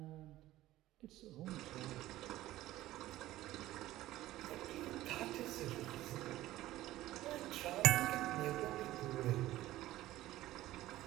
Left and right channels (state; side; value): quieter; left; 15.6 dB